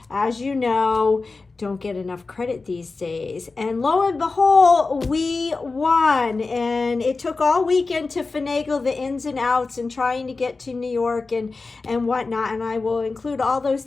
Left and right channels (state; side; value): quieter; right; 3.9 dB